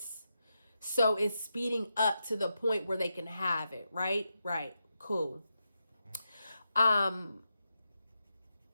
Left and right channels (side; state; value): both; inverted; correlation -0.87